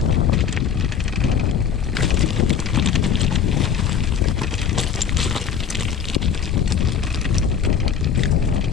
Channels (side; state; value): right; quieter; 7.6 dB